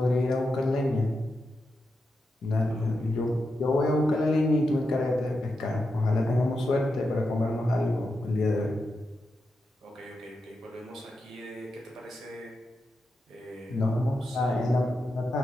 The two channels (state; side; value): normal; both; correlation 0.87